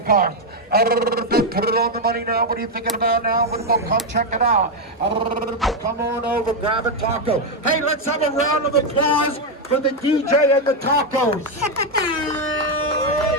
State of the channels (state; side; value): normal; both; correlation 0.04